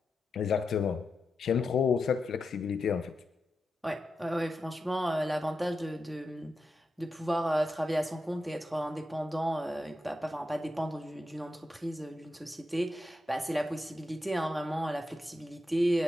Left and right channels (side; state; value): both; normal; correlation 0.88